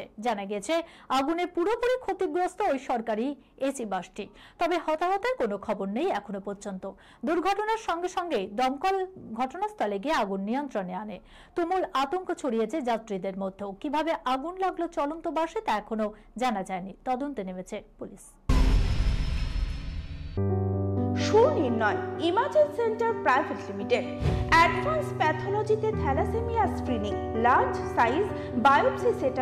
জানা গেছে আগুনে পুরোপুরি ক্ষতিগ্রস্ত ওই সরকারি এসি বাসটি। তবে হতাহতের কোনো খবর নেই এখনো পর্যন্ত। দুর্ঘটনার সঙ্গে সঙ্গে দমকল ঘটনাস্থলে গিয়ে আগুন নিয়ন্ত্রণে আনে। তুমুল আতঙ্ক ছড়িয়েছে যাত্রীদের মধ্যেও। কিভাবে আগুন লাগলো চলন্ত বাসে তা এখনো জানা যায়নি। তদন্তে নেমেছে পুলিশ। Sunirnoy imaging centre private limited advance প্যাথোলজিতে thalassaemia screening, large size biopsy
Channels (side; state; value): both; identical; correlation 1.00